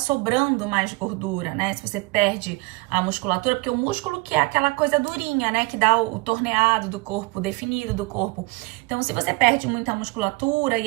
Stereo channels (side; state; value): left; quieter; 25.0 dB